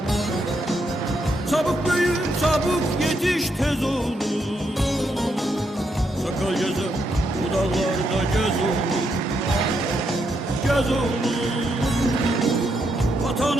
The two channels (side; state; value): both; normal; correlation 0.79